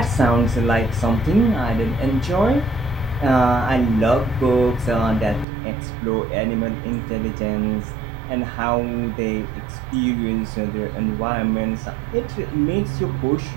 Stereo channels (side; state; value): left; drops out; at 5.5 s